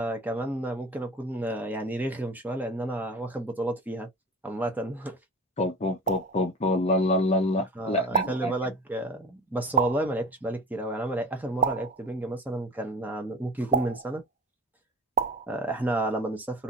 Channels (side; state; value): both; normal; correlation 0.34